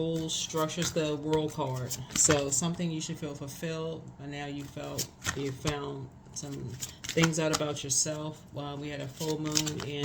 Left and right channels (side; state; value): both; identical; correlation 1.00